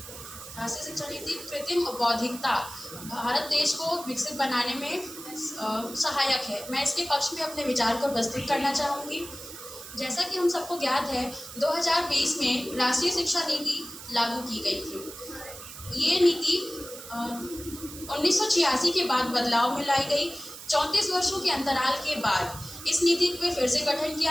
कृत्रिम बौद्धिकता भारत देश को विकसित बनाने में सहायक है। मैं इसके पक्ष में अपने विचार को प्रस्तुत करना चाहूँगी। जैसा कि हम सबको ज्ञात है, 2020 में राष्ट्रीय शिक्षा नीति लागू की गई थी। ये नीति 1986 के बाद बदलाव में लाई गई। 34 वर्षों के अंतराल के बाद इस नीति पे फिर से गठन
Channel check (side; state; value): right; noise; hiss, 13 dB below the sound